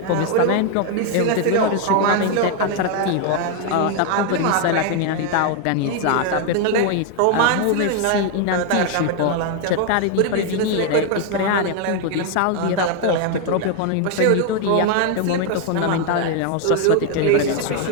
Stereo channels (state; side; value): different; both; correlation 0.01